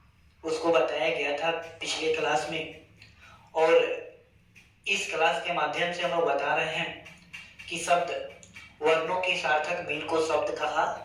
उसको बताया गया था पिछले क्लास में। और इस क्लास के माध्यम से हम लोग बता रहे हैं कि शब्द वर्णों के सार्थक मेल को शब्द कहा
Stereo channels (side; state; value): both; identical; correlation 1.00